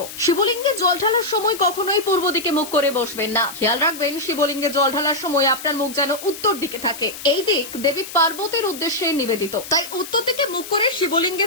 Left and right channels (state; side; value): noise; left; hiss, 12 dB below the sound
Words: শিবলিঙ্গে জল ঢালার সময় কখনোই পূর্ব দিকে মুখ করে বসবেন না। খেয়াল রাখবেন শিবলিঙ্গে জল ঢালার সময় আপনার মুখ যেন উত্তর দিকে থাকে। এই দিক দেবী পার্বতীর উদ্দেশ্যে নিবেদিত, তাই উত্তর দিকে মুখ করে শিবলিঙ্গে